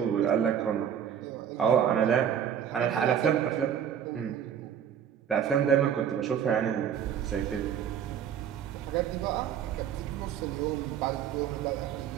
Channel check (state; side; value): quieter; left; 8.8 dB